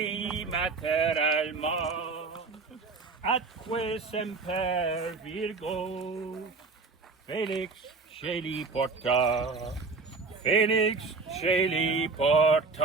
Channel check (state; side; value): quieter; left; 4.3 dB